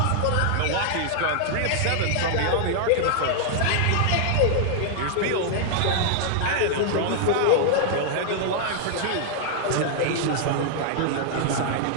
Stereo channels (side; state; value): both; different; correlation -0.01